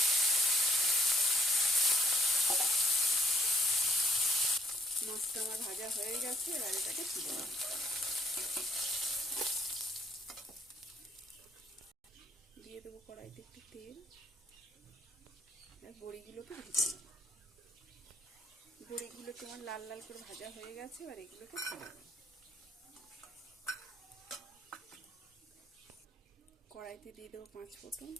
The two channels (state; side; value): normal; both; correlation 0.66